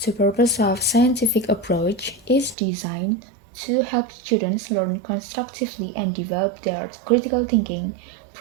purpose of scientific approach is designed to help students learn constructively and develop their critical thinking,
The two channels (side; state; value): left; drops out; at 2.6 s